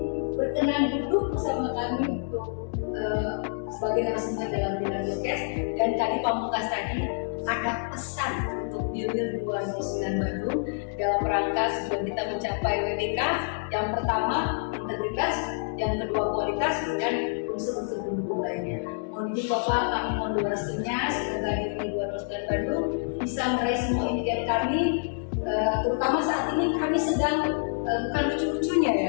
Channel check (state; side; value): silent; right; digital silence